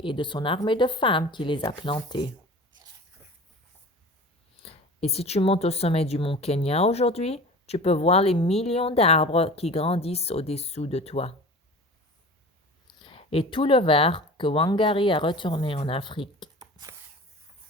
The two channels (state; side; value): normal; both; correlation 0.38